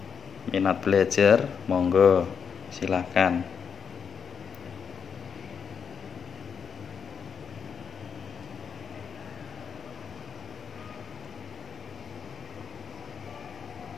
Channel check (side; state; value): right; quieter; 6.8 dB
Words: Minat belajar, monggo silahkan.